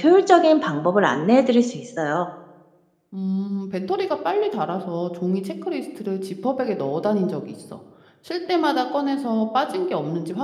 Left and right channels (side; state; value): both; identical; correlation 1.00